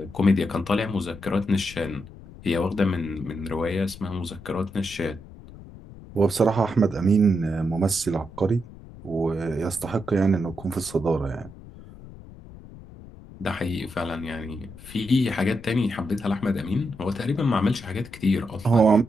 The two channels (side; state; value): left; noise; rumble, 17 dB below the sound